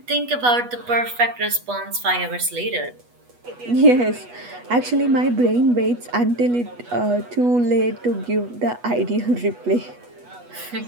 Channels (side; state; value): left; late; 8.2 ms